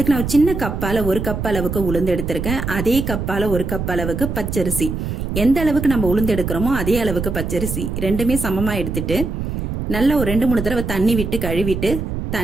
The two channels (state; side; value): noise; right; rumble, 4 dB below the sound